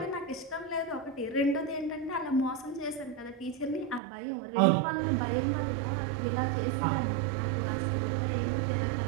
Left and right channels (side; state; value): left; drops out; at 4.0 s